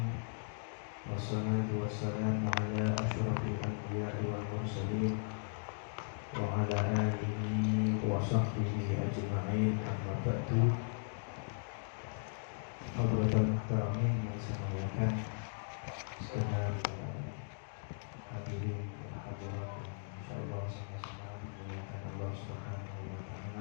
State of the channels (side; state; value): right; silent; digital silence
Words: Wassalatu wassalamu ala asyrafil anbiya'i wal mursalin wa ala alihi wa sahbihi ajma'in, amma ba'du. Hadratul muhtaramin yang saya muliakan segenap hadirin dan hadirat, insyaallah sama-sama dimuliakan Allah Subhanahu wa